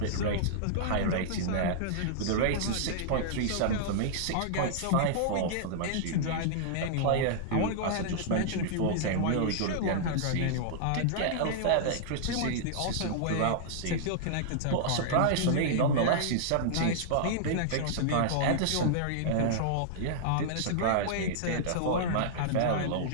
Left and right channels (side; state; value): both; different; correlation -0.02